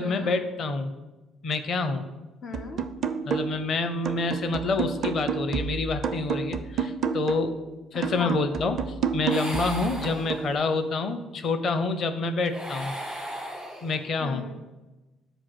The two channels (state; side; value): normal; both; correlation 0.60